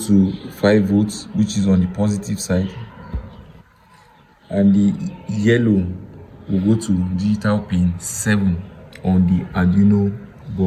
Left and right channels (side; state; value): both; identical; correlation 1.00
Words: 5 volts, which is on the positive side, and the yellow will go to digital pin 7 on the Arduino